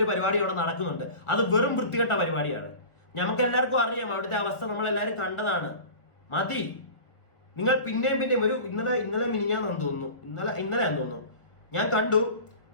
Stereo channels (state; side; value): late; right; 1.6 ms